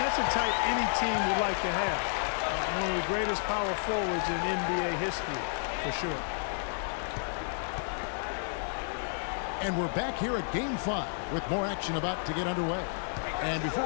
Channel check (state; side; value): silent; right; digital silence